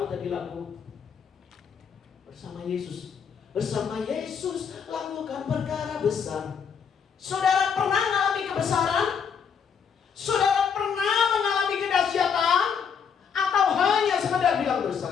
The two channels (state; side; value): quieter; right; 6.8 dB